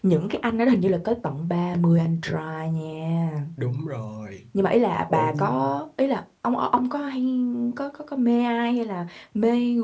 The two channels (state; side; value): identical; both; correlation 1.00